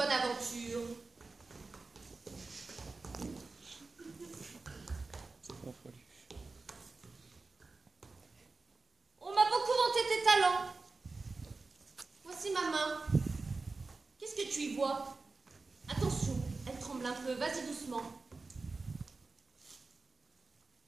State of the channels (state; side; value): quieter; left; 3.9 dB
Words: aventure. On m'a beaucoup vanté tes talents. Voici ma main. Qu'est-ce que tu y vois? Attention, elle tremble un peu, vas-y doucement.